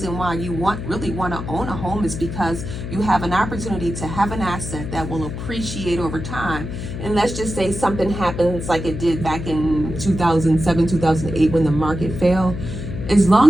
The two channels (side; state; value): left; noise; hum, 7 dB below the sound